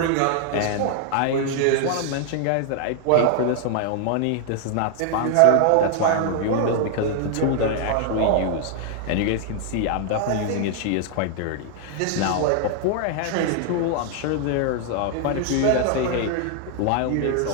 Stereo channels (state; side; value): different; both; correlation 0.00